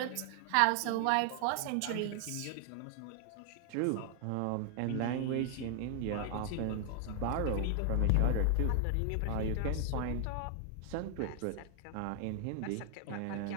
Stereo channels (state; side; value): different; both; correlation 0.00